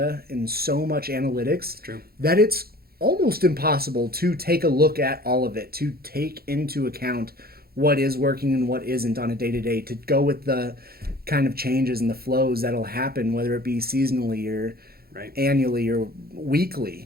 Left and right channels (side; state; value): left; late; 0.44 ms